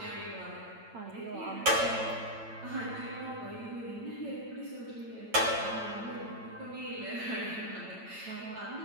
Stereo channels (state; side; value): late; left; 8.9 ms